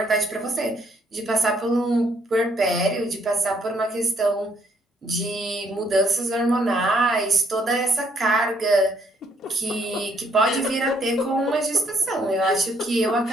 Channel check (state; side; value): normal; both; correlation 0.68